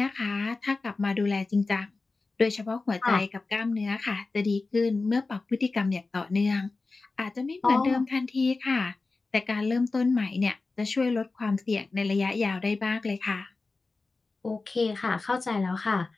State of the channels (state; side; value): quieter; right; 3.7 dB